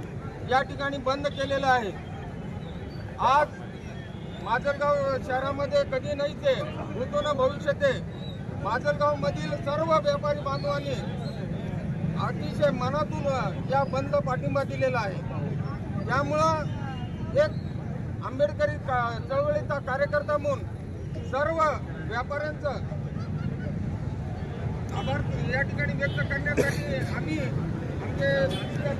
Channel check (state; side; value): identical; both; correlation 1.00